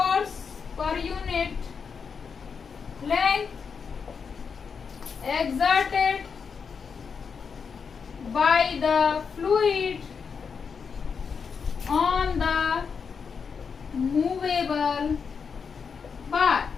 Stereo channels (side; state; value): right; quieter; 6.0 dB